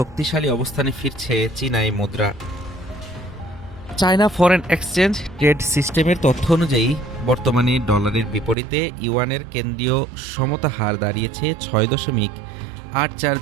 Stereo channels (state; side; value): drops out; left; at 8.6 s